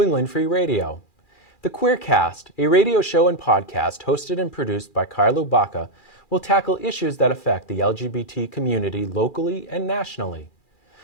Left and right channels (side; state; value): right; late; 2.4 ms